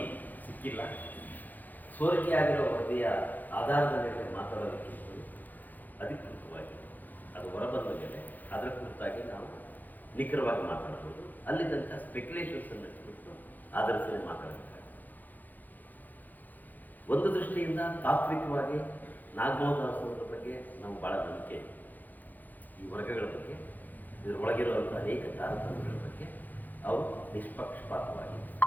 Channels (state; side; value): late; right; 0.084 ms